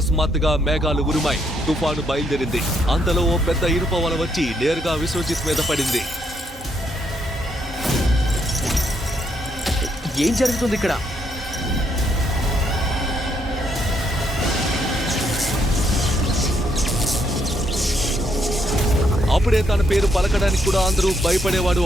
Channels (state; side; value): normal; both; correlation 0.74